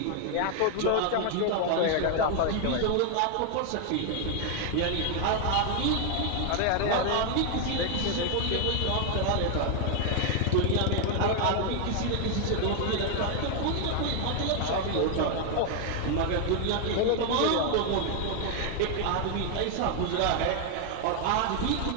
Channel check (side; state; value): both; different; correlation 0.00